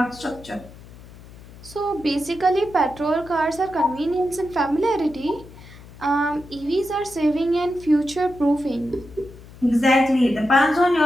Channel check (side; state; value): left; noise; hum, 19 dB below the sound